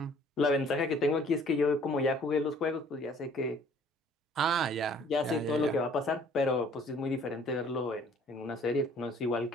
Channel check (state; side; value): normal; both; correlation 0.56